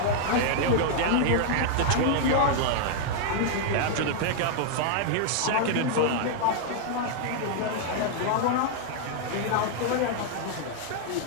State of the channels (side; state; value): both; different; correlation 0.00